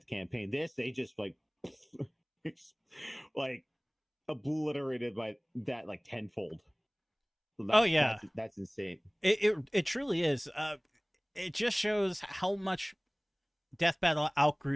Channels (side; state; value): both; identical; correlation 1.00